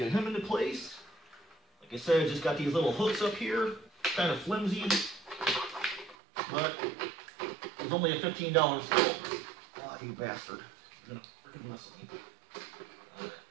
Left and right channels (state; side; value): drops out; left; at 6.2 s